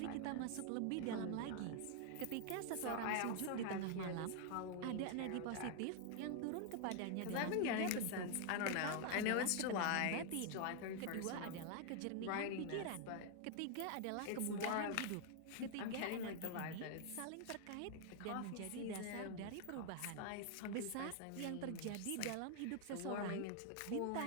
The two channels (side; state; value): both; different; correlation 0.00